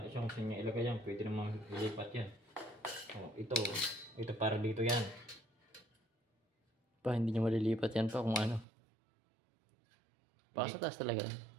siya kung saan niya ilagay yan. Pwede namang ilipat yan. Oh, ito para dito yan. Pa, hindi nyo malilipat yan pa kung ano. Baka sa taas talaga yan.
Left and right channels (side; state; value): left; drops out; at 8.7 s